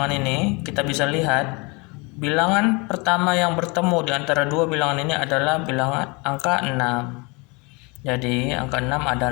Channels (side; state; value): right; quieter; 28.4 dB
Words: ini, kita bisa lihat bilangan pertama yang bertemu di antara dua bilangan ini adalah bilangan angka 6. Jadi angka 6